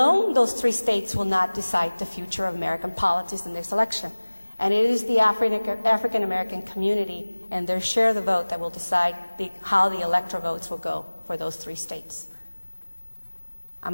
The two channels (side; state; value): both; inverted; correlation -1.00